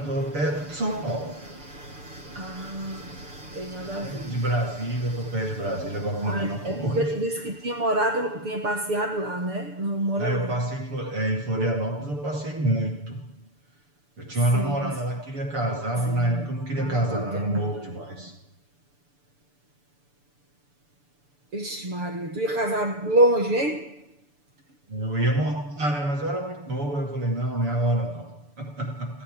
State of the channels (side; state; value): left; late; 6.9 ms